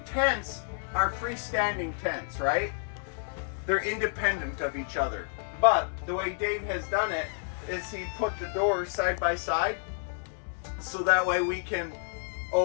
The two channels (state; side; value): silent; right; digital silence